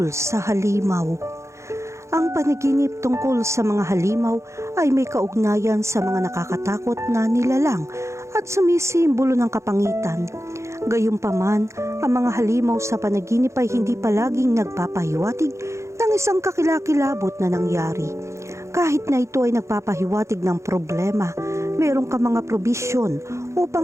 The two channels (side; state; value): left; late; 0.14 ms